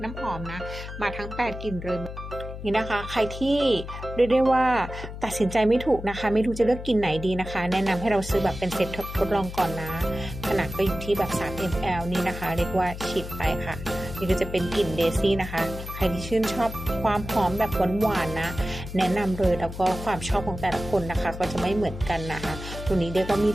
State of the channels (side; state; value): left; noise; hum, 10 dB below the sound